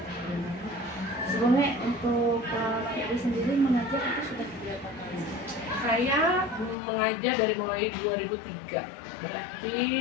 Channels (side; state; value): right; drops out; at 6.8 s